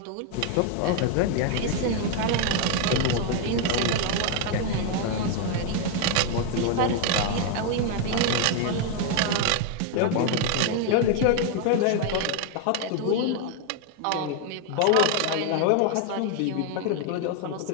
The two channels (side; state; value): both; different; correlation 0.01